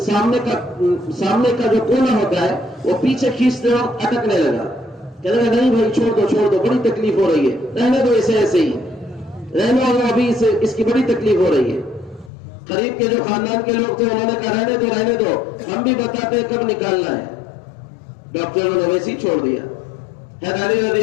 جو کونا ہوتا ہے وہ پیچھے کھینچتے وقت اٹکنے لگا۔ کہنے لگا نہیں بھائی چھوڑ دو بڑی تکلیف ہو رہی ہے، رہنے دو اسے ایسے ہی رہنے دو، ابھی اس کی بڑی تکلیف ہو رہی ہے۔ قریب کے جو خاندان کے لوگ تھے انہوں نے کہا رہنے دو، ہم بھی بتاتے ہیں کب نکالنا ہے۔ ڈاکٹروں نے ویسے ہی چھوڑ دیا۔ علی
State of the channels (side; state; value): right; drops out; at 12.3 s